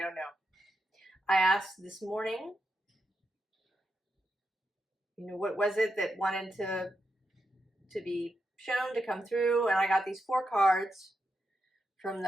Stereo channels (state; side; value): normal; both; correlation 0.85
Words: know. I asked this morning, what was it that wanted to be shown, to come through, and I got these 4 cards from